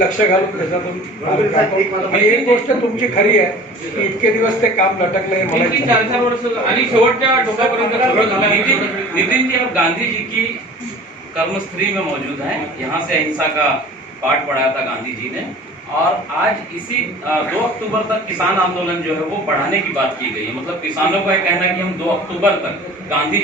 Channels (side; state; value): both; normal; correlation 0.43